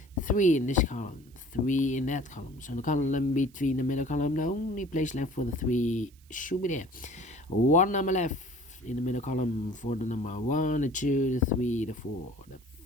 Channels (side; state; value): right; noise; hiss, 30 dB below the sound